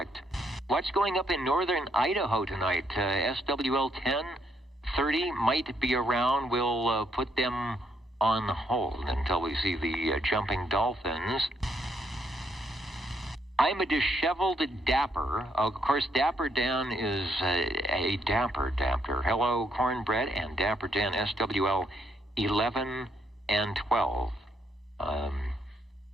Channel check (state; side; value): normal; both; correlation 0.74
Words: What's going up in northern Idaho tonight? SWL 1030 might be around. We'll put them on hold until we see the jumping dolphins. I'm a disheveled dapper. Of course, Dapper Dan is a dapper. Hello, Cornbread and Dapper Dan, SWL 11 and 12.